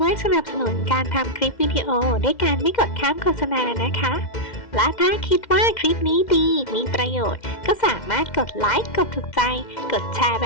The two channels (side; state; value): right; late; 2.1 ms